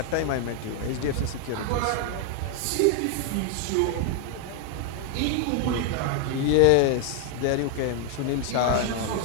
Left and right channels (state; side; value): different; both; correlation 0.00